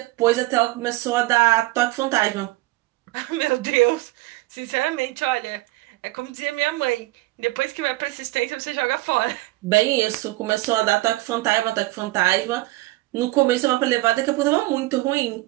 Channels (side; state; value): left; quieter; 19.8 dB